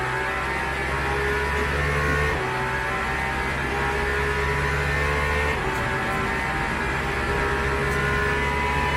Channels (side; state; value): both; identical; correlation 1.00